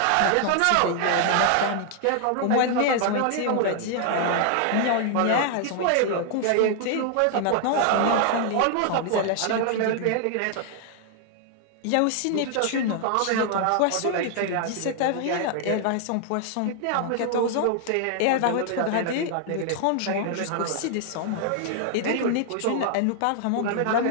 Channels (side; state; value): both; different; correlation 0.00